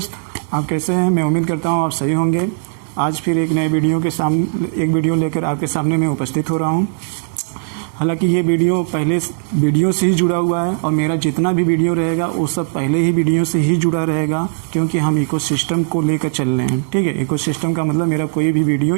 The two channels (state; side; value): silent; left; digital silence